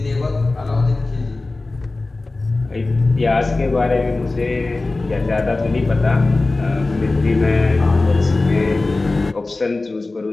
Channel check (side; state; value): right; quieter; 3.3 dB